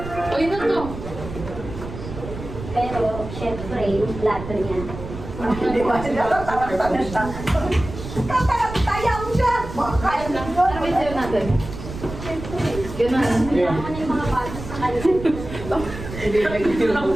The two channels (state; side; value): noise; right; rumble, 10 dB below the sound